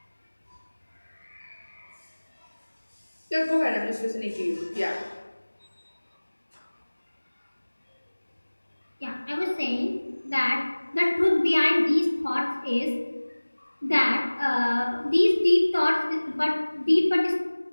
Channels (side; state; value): both; inverted; correlation -1.00